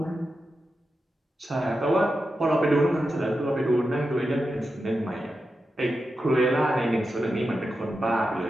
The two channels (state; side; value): normal; both; correlation 0.90